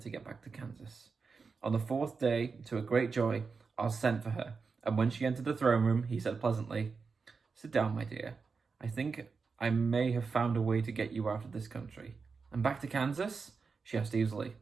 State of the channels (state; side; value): quieter; left; 4.9 dB